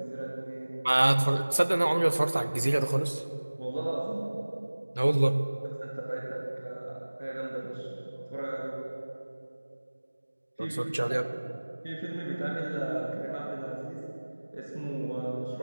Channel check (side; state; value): both; inverted; correlation -1.00